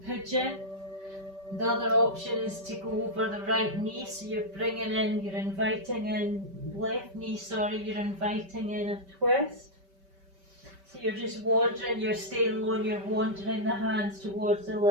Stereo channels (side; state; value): left; late; 5.2 ms